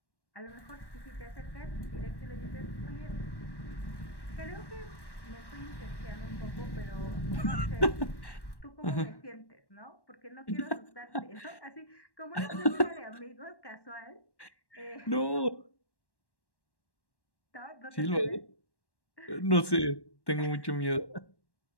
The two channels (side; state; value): right; late; 1.1 ms